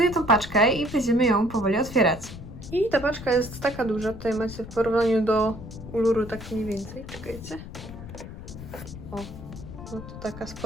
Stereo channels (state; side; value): noise; left; rumble, 12 dB below the sound